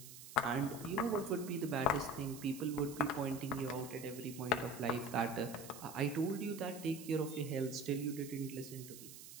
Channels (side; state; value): right; noise; hiss, 14 dB below the sound